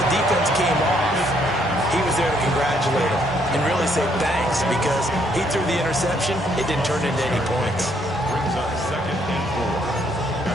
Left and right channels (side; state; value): both; normal; correlation 0.69